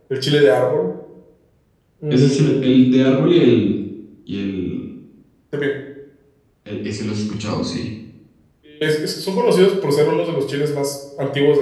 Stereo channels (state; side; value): identical; both; correlation 1.00